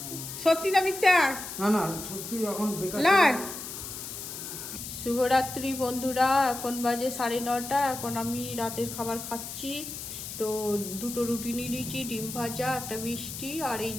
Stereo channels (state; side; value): noise; left; hiss, 8 dB below the sound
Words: সত্যি না মিথ্যা? না না সত্যি এখন বেকার। শুভরাত্রি বন্ধুরা, এখন বাজে 9:30। এখন আমি রাতের খাবার খাচ্ছি। তো 2টো রুটি নিয়ে নিয়েছি, ডিম ভাজা, একটা মিষ্টি, আর এই